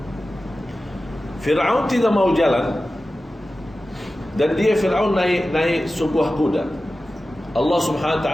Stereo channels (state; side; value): normal; both; correlation 0.95